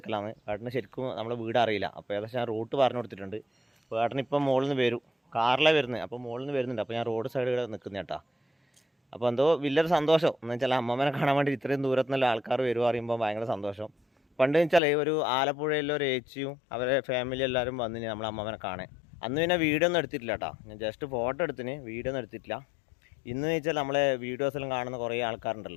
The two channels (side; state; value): right; drops out; at 14.8 s